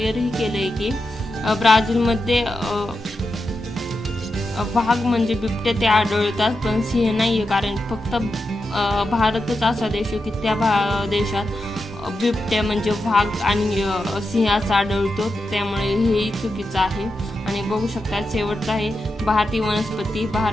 केलंय की ब्राझीलमध्ये वाघ म्हणजे बिबट्या ते आढळतात पण सिंह नाहीये कारण फक्त भारतच असा देश आहे की त्या देशात बिबट्या म्हणजे वाघ आणि सिंहाचा आढळतो त्यामुळे हेही चुकीचं आहे। आणि बघू शकता शेवटचं आहे भारतीय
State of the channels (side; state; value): both; normal; correlation 0.88